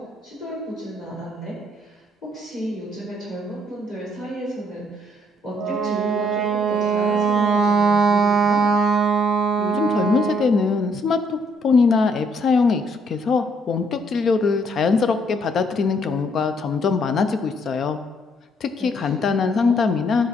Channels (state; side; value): normal; both; correlation 0.69